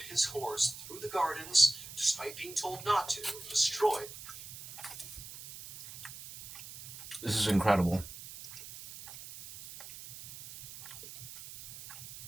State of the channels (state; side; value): noise; right; hiss, 13 dB below the sound